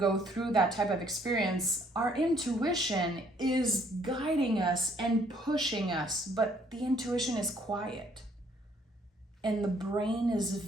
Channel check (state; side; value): normal; both; correlation 0.64